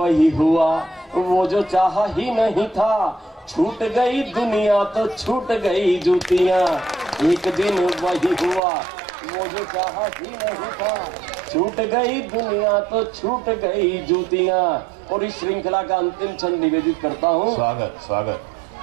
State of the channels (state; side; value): drops out; left; at 8.6 s